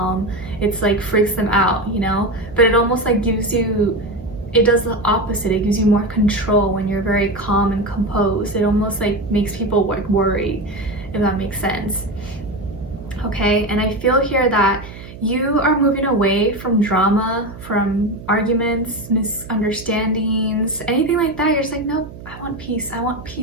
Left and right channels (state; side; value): noise; right; hum, 16 dB below the sound